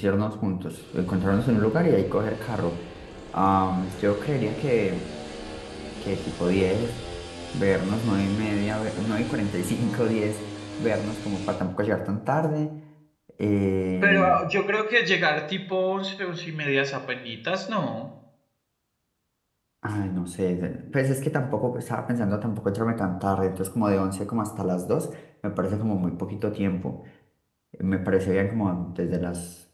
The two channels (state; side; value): identical; both; correlation 1.00